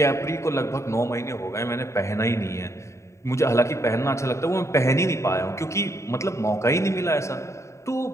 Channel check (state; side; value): late; right; 0.14 ms